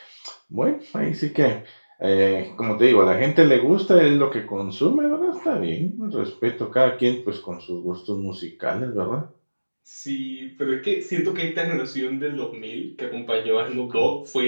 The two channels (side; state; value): both; inverted; correlation -1.00